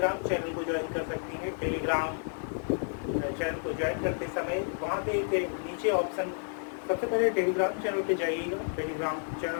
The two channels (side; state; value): right; silent; digital silence